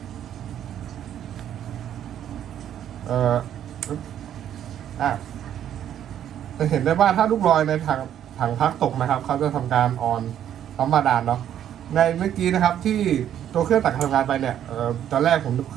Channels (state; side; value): quieter; left; 10.4 dB